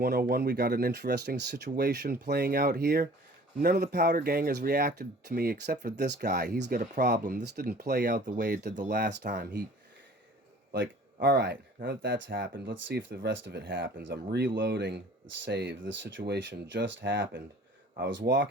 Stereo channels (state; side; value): normal; both; correlation 0.49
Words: We got an interesting situation playing out here. None of the Powder Gang has reacted to me except for this guy. He's got a problem. This didn't play out the way it did the last time. Alright, now that that's happened, let's see if the rest of it happens. I'm reloading the save. This situation just happened. I was